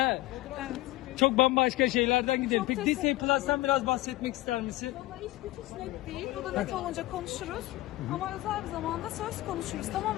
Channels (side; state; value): right; quieter; 18.3 dB